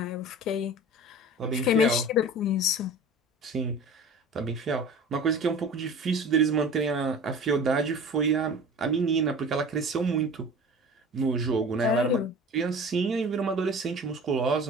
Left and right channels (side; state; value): both; normal; correlation 0.39